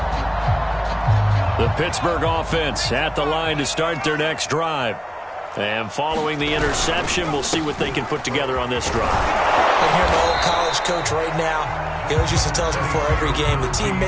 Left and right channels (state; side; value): identical; both; correlation 1.00